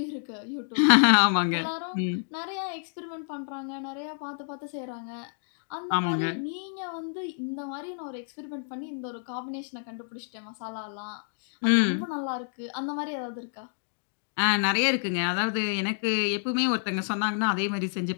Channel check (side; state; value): right; silent; digital silence